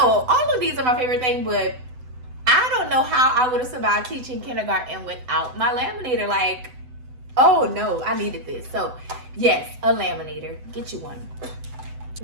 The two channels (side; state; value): left; late; 7.9 ms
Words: all of these are my favorite thing, but I don't know how I would have survived teaching kindergarten without my laminator. Like, oh no, I needed this. So yes, a laminator. Get you one.